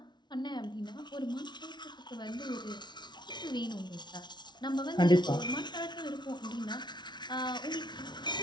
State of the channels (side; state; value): right; late; 0.21 ms